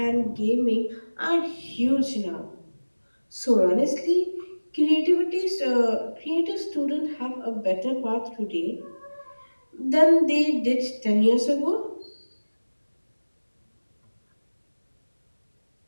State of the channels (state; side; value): inverted; both; correlation -1.00